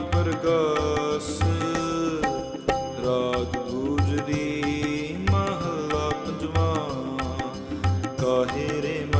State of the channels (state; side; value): identical; both; correlation 1.00